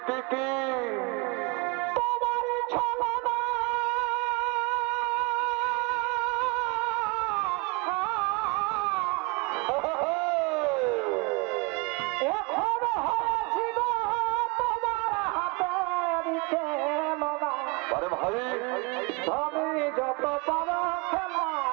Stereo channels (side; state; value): left; quieter; 29.0 dB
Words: কি আরে ভাই যত পারো